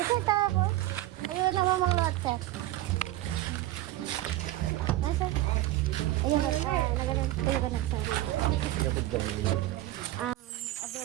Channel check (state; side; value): quieter; left; 15.8 dB